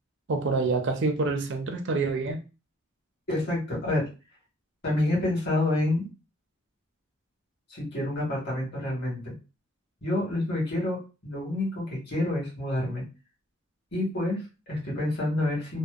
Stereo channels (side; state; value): both; normal; correlation 0.60